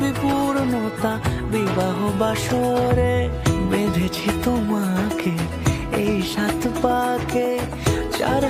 পূর্ণতা বিবাহ বাসরে। বেঁধেছি তোমাকে এই 7 পাকে, 4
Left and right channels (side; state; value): both; identical; correlation 1.00